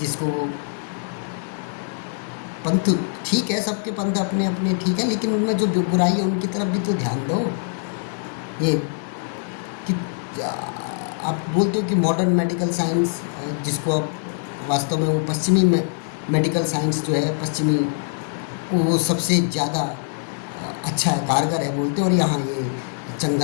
पंथ ठीक है, सबके पंथ अपने अपने ठीक है, लेकिन उनमें जो बुराई है उनकी तरफ भी तो ध्यान दो। ये कि आप बोलते हो कि मॉडर्न मेडिकल साइंस, जिसको आप वास्तव में वो पश्चिमी मेडिकल साइंस जो है पश्चिमी, वो सबसे ज़्यादा अच्छा है, कारगर है बोलते हैं, और यहाँ ये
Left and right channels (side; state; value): right; silent; 56 dB below the other